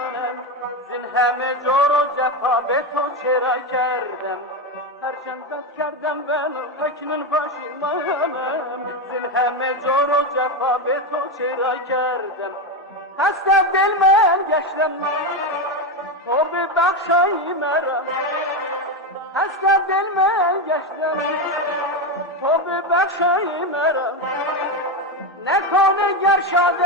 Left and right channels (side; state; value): both; normal; correlation 0.12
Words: زین همه جور و جفا به تو چرا کردم. هرچند بد کردم ولی اکنون پشیمانم، زین همه جور و جفا به تو چرا کردم. خسته دل من گشتم تو ببخشای مرا، خسته دل من گشتم تو ببخشای مرا. نکنه گر